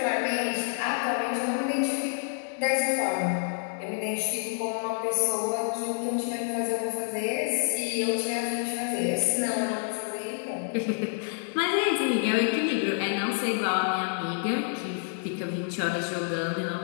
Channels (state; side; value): silent; right; digital silence